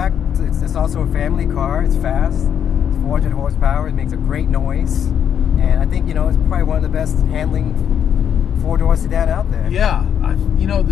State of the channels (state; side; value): quieter; right; 8.7 dB